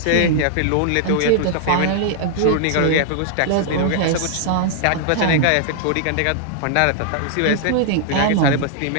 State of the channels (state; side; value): different; both; correlation -0.01